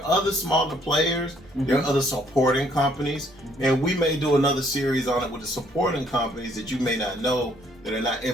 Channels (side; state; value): right; noise; hum, 28 dB below the sound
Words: other smaller players. There Mm-hmm. are other supporting companies. And we may do another series on it with the supporting companies that you may not know that are not